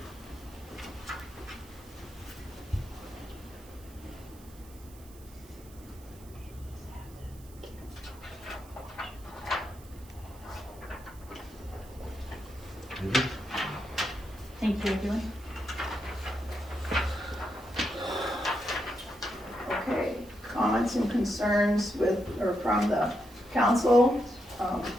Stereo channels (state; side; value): noise; right; hiss, 23 dB below the sound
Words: Thank you're doing. Okay, comments and concerns with, or from the council,